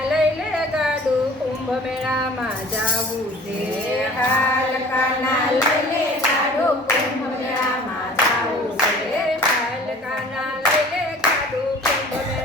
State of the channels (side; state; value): both; normal; correlation 0.46